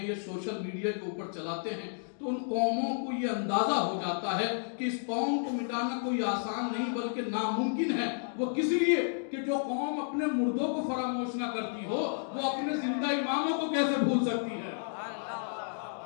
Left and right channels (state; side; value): silent; right; digital silence